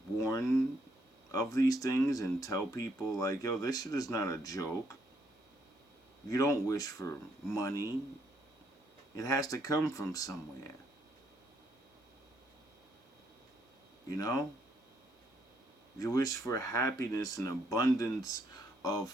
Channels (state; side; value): normal; both; correlation 0.73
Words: warn of these things and tell people, like, yo, this shit is not a joke. You don't wish for money. It has to come from somewhere. You know? You wish for happiness and abundance of